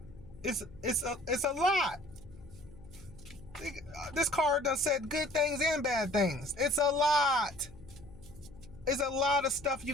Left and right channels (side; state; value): left; noise; hum, 20 dB below the sound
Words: It's a lot. This card done said good things and bad things. It's a lot. It's a lot of stuff you